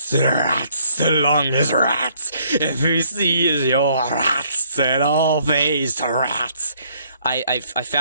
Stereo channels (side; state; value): both; inverted; correlation -0.65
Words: rats along as rats. If you see is your rats, then all face rats. I